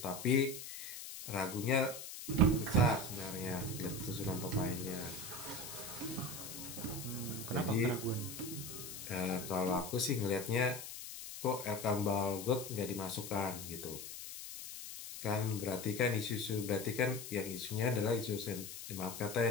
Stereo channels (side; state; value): left; noise; hiss, 10 dB below the sound